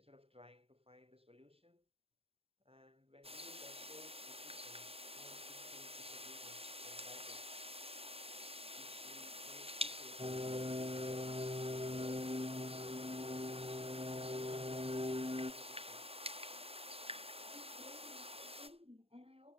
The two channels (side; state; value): left; late; 0.28 ms